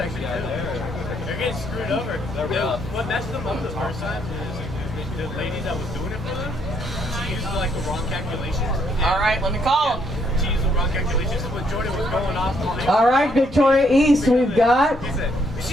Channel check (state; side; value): normal; both; correlation 0.71